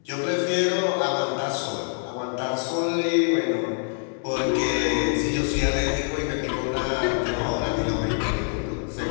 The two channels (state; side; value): silent; right; 58 dB below the other